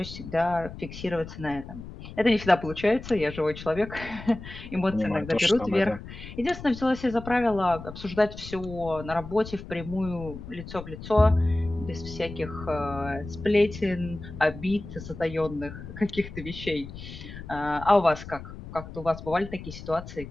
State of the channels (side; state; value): left; noise; rumble, 12 dB below the sound